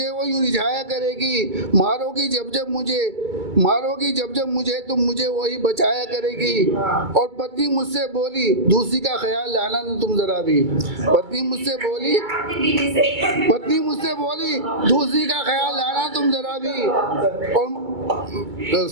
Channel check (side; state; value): left; late; 2.3 ms